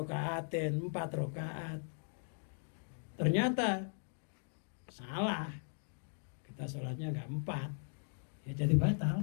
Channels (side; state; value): right; silent; digital silence